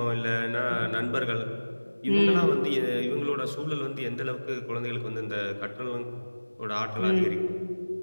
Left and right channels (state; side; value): inverted; both; correlation -1.00